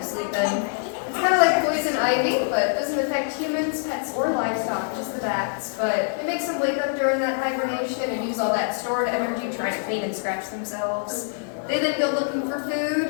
sleeping. It's kind of like poison ivy, but it doesn't affect humans, pets, or livestock, just the bats. But it makes them wake up during that hibernation and use all that stored energy trying to clean and scratch themselves. They then go looking for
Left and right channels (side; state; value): right; silent; digital silence